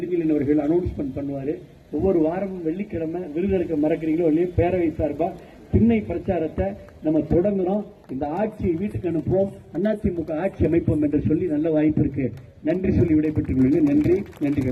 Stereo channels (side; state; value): both; identical; correlation 1.00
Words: அவர்கள் அனௌன்ஸ்மெண்ட் பண்ணுவாரு. ஒவ்வொரு வாரமும் வெள்ளிக்கிழமை விருதெடுக்க மறக்கிறீங்களோ இல்லையோ பேரவை சார்பா திண்ணை பிரச்சாரத்தை நம்ம தொடங்குறோம். இந்த ஆட்சியை வீட்டுக்கு அனுப்புவோம், அதிமுக ஆட்சி அமைப்போம் என்று சொல்லி நல்ல வாய்ப்பு இருக்கு. நன்றி சொல்லி விடைபெற்றுக் கொள்ளுங்கள். நன்றி